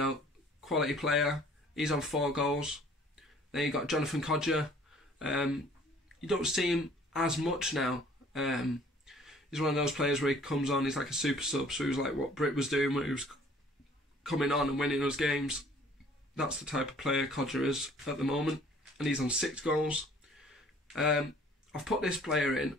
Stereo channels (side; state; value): both; normal; correlation 0.55